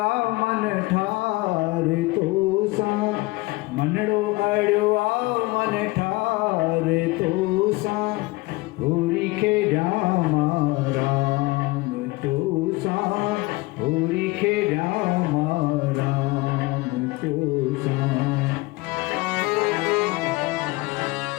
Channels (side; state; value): right; quieter; 22.2 dB